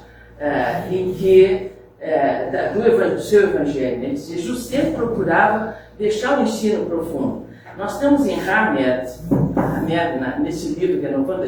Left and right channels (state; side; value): identical; both; correlation 1.00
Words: em que do seu evangelho. Né? Jesus sempre procurava deixar o ensino profundo. Nós temos em Hamed, nesse livro que é 90